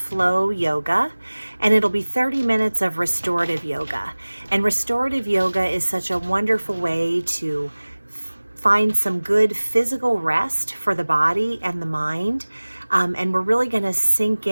yoga, and it'll be 30 minutes of restorative yoga. And restorative yoga is such a wonderful way to find some good physical rest for the body and the mind. And we're really going to sink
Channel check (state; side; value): inverted; both; correlation -1.00